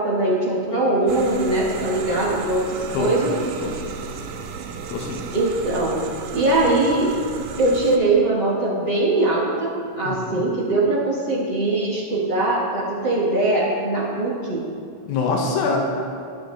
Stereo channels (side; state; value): right; late; 17 ms